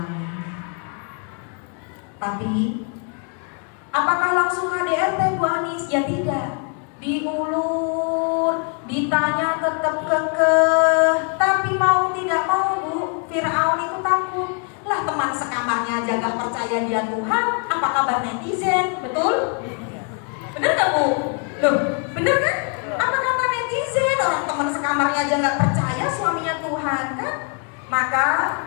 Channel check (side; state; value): right; quieter; 39.2 dB